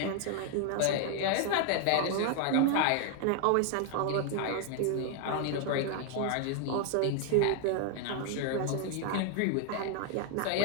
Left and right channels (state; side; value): different; both; correlation 0.00